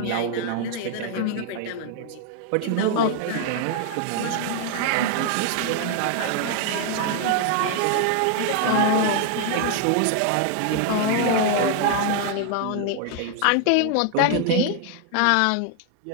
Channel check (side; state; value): both; different; correlation 0.00